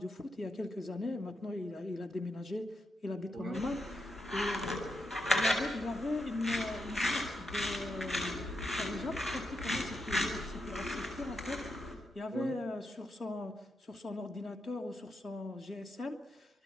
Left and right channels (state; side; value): normal; both; correlation 0.84